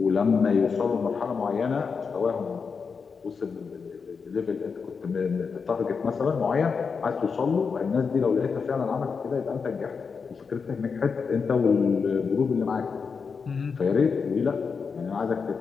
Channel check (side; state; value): right; quieter; 5.5 dB